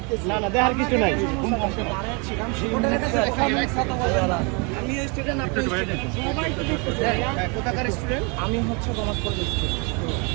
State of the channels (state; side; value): quieter; left; 32.6 dB